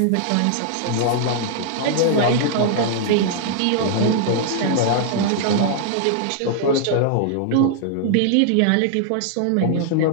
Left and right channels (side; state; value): both; different; correlation -0.01